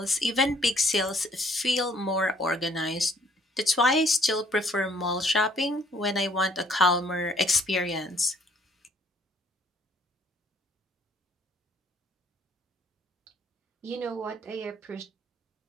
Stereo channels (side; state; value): both; normal; correlation 0.62